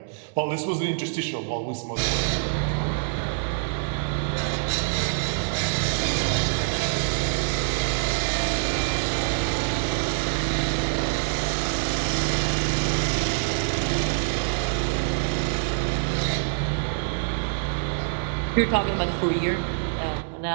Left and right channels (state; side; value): silent; left; digital silence